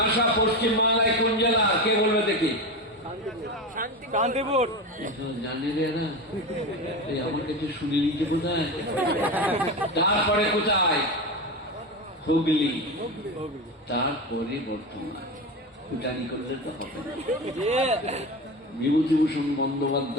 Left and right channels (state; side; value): normal; both; correlation 0.22